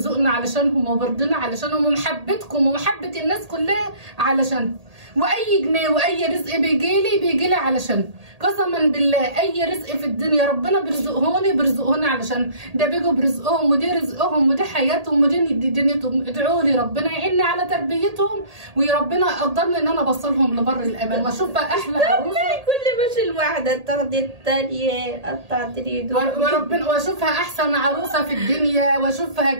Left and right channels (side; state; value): left; late; 1.8 ms